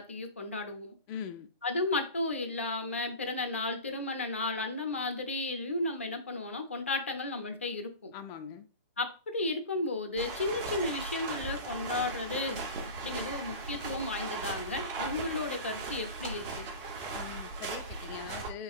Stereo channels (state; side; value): inverted; both; correlation -0.31